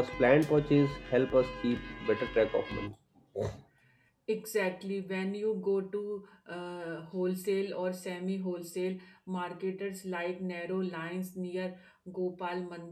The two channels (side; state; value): both; identical; correlation 1.00